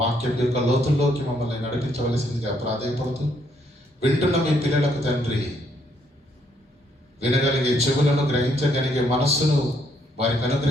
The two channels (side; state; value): both; normal; correlation 0.71